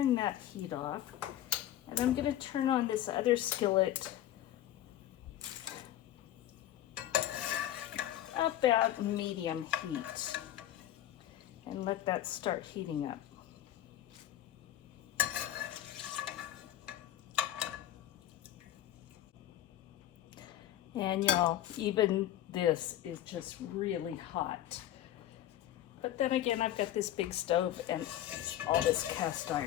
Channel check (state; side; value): quieter; right; 12.6 dB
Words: that heat off, and I'm going to turn on this other skillet about medium heat and let that start heating up. And y'all, even this is just really hot. But then again, I've got this big stove and all this cast